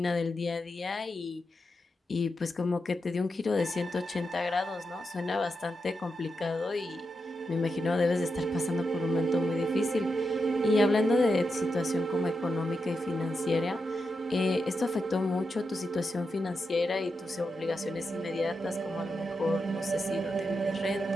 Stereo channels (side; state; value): both; normal; correlation 0.87